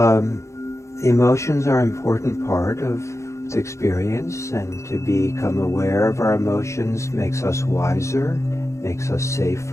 emotions are an important part of the experience, and to become aware of our emotions makes us wiser, makes us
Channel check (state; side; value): late; right; 0.14 ms